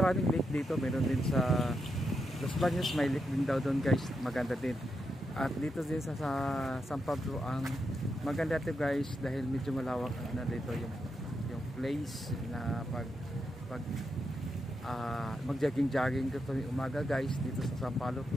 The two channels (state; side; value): normal; both; correlation 0.84